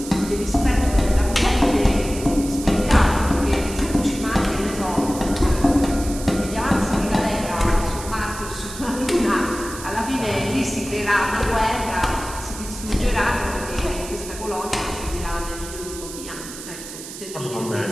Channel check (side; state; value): right; noise; hiss, 12 dB below the sound